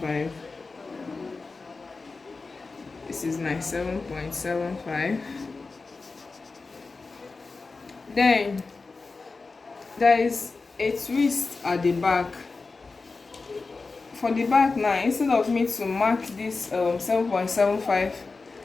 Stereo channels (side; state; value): right; quieter; 4.0 dB